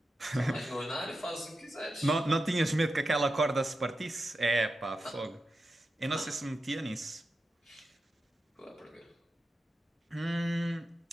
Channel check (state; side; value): normal; both; correlation 0.90